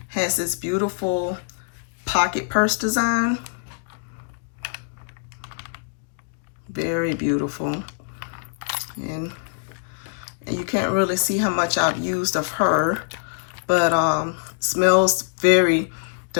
Has this beautiful pocket purse design. Very beautiful. And you can't really see how much I've used of her, but smells very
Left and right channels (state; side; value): silent; right; digital silence